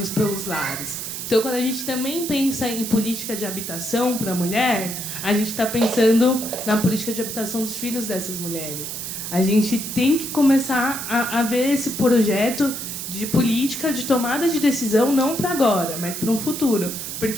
pelos lares. Então, quando a gente também pensa em política de habitação para a mulher, a gente está pensando na política de habitação dos filhos dessas mulheres. A gente tem que começar a ver esse projeto de política, de tomada de decisão, não para agora, mas para um futuro.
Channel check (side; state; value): right; noise; hiss, 6 dB below the sound